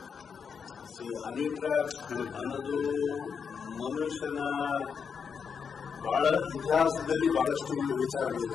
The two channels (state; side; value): quieter; right; 6.4 dB